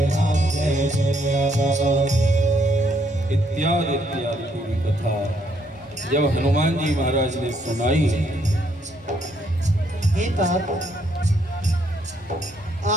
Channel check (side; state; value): both; normal; correlation 0.71